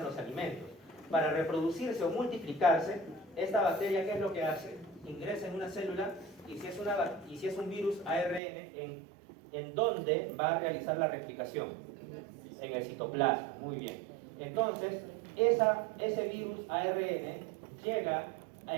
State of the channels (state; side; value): drops out; left; at 8.4 s